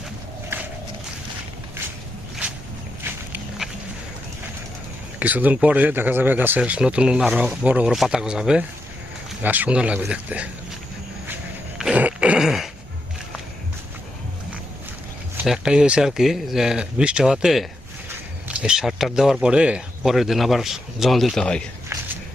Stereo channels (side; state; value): both; normal; correlation 0.84